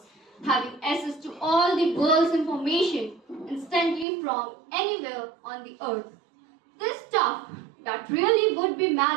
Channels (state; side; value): drops out; left; at 4.0 s